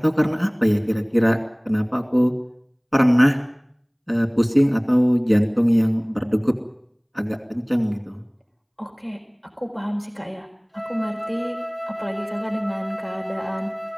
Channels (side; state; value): both; identical; correlation 1.00